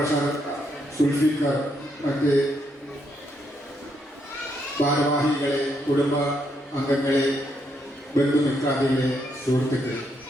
സുൽഫിക്കർ, മറ്റ് ഭാരവാഹികളെ, കുടുംബ അംഗങ്ങളെ, ബന്ധുമിത്രാദികളെ, സുഹൃത്തുക്കളെ,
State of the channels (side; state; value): both; normal; correlation 0.76